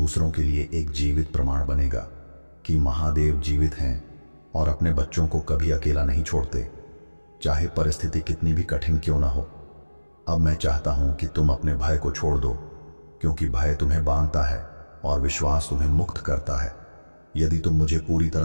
के लिए एक जीवित प्रमाण बनेगा कि महादेव जीवित हैं और अपने बच्चों को कभी अकेला नहीं छोड़ते, चाहे परिस्थिति कितनी भी कठिन क्यों ना हो। अब मैं चाहता हूं कि तुम अपने भय को छोड़ दो, क्योंकि भय तुम्हें बांधता है और विश्वास तुम्हें मुक्त करता है। यदि तुम मुझे पूरी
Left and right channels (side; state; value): both; inverted; correlation -1.00